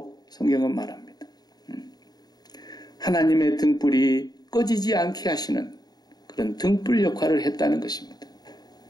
성경은 말합니다. 하나님의 등불이 꺼지지 않게 하시는 그런 등불 역할을 했다는 것입니다.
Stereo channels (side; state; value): right; late; 0.19 ms